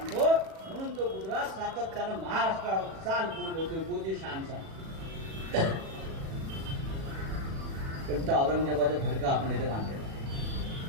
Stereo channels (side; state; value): left; late; 37 ms